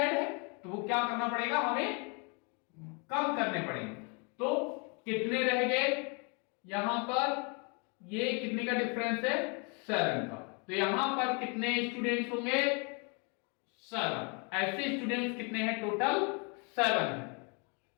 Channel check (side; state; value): right; quieter; 34.1 dB